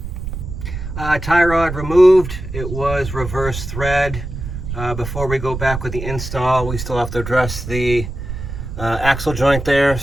Tie rod removed. It was reverse thread. Before we go back with the install, we still have to address the axle joint there.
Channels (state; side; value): noise; right; rumble, 7 dB below the sound